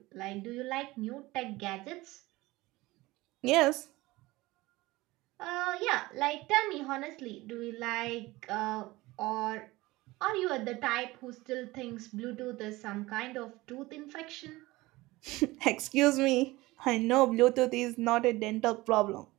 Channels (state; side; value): quieter; left; 20.0 dB